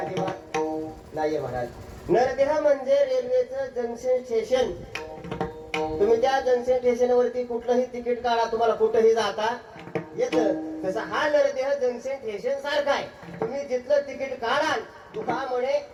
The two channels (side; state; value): both; identical; correlation 1.00